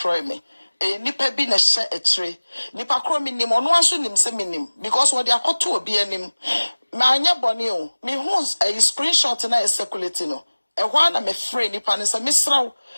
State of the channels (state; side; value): inverted; both; correlation -1.00